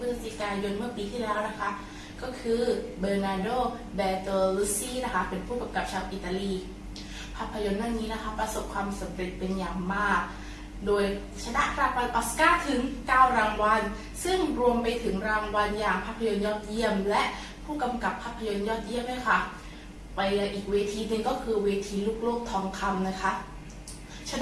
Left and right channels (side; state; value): both; identical; correlation 1.00